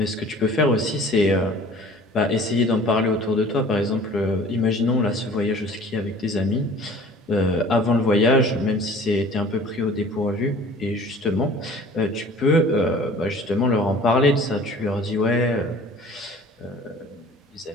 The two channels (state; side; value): normal; both; correlation 0.47